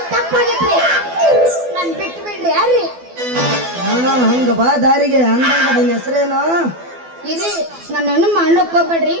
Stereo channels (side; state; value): left; late; 12 ms